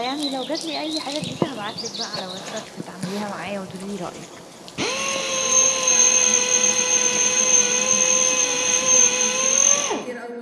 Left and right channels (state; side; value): identical; both; correlation 1.00